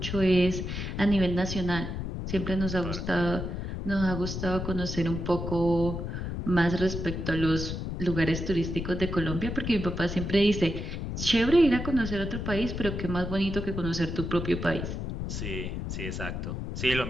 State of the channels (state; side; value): noise; left; rumble, 4 dB below the sound